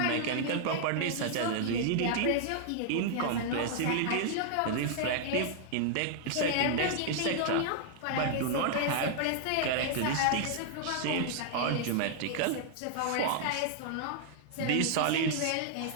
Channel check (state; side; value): different; both; correlation -0.01